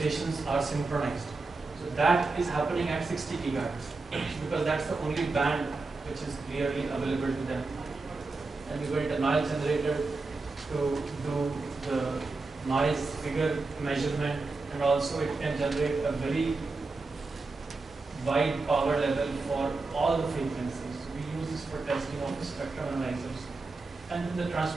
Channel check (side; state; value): left; quieter; 3.7 dB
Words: are synchronized. So that is happening at 60 gigahertz because that's the only band which is clearly available to them. And we built a noise generator to do the noise figure measurement, and also it can generate a very wide power level for all the frequencies. We use this for testing of the spectrum analyzers. And then the